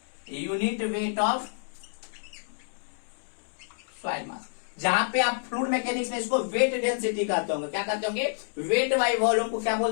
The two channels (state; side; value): silent; right; 59 dB below the other